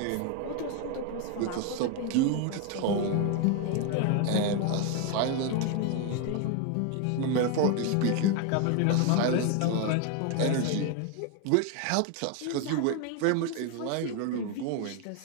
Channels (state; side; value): different; both; correlation 0.01